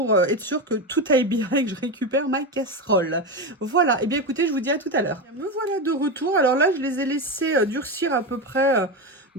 être sûr que tout aille bien et que je récupère ma casserole. Voilà, et bien écoutez, je vous dis à tout à l'heure. Me voilà de retour. Alors là, je les ai laissés durcir à peu près...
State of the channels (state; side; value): normal; both; correlation 0.16